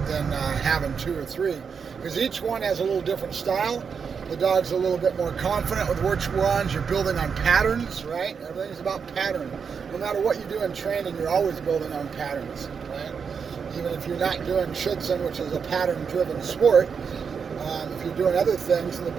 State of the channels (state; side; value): quieter; left; 6.2 dB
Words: having two or three, because each one has a little different style. The dog's a little bit more confident with which ones. You're building on patterns, right? Everything's about pattern. No matter what you do in training, you're always building on patterns, right? Even if you're not doing Schützen, which is a pattern-driven sport, if you're doing other things, in the